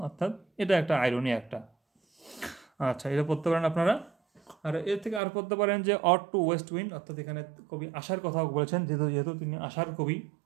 অর্থাৎ এটা একটা আইরনি একটা। আচ্ছা, এটা পড়তে পারেন আপনারা। আর এর থেকে আর পড়তে পারেন যে অড টু ওয়েস্ট উইন্ড, অর্থাৎ এখানে কবি আশার কথা বলেছেন, যেহেতু তিনি আশার কবি।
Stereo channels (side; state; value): left; drops out; at 5.2 s